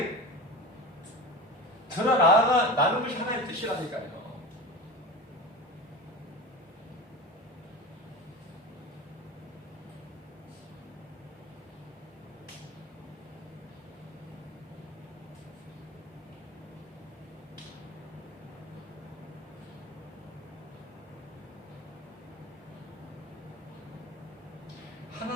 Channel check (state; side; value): normal; both; correlation 0.30